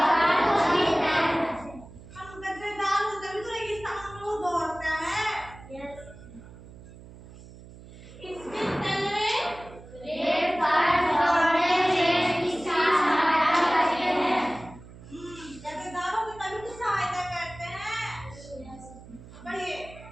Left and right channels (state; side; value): noise; right; hum, 18 dB below the sound